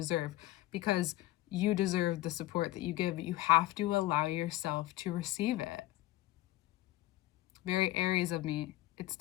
because you deserve the support that you give, but you have to allow yourself to receive it. Very Aries of me, it's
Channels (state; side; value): quieter; right; 16.5 dB